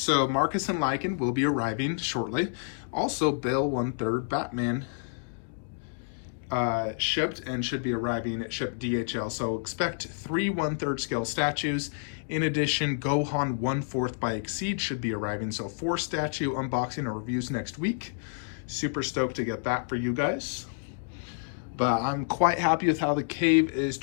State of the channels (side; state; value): right; silent; digital silence